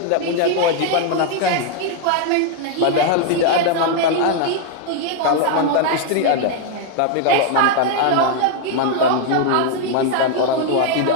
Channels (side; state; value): both; different; correlation 0.00